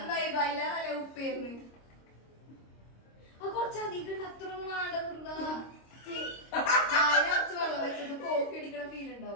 ബൈലാറല്ലേ ഉപ്പേരുന്ന് കുറച്ചധികം അത്ര വേണ്ടതുണ്ടാ വെള്ളം വെച്ചത് കോഫി അടിക്കണ ഫീൽ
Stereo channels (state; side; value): late; right; 26 ms